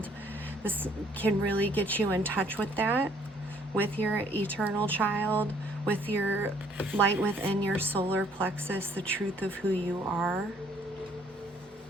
This can really get you in touch with that, with your eternal child, with your light within your solar plexus, the truth of who you are.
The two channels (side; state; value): both; normal; correlation 0.62